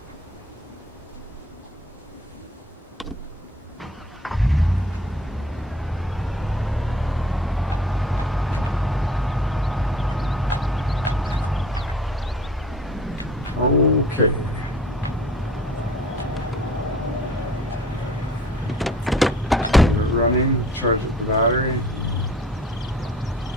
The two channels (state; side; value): normal; both; correlation 0.49